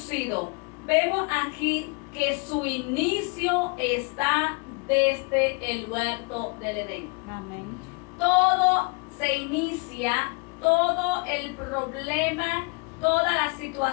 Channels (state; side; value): quieter; right; 31.7 dB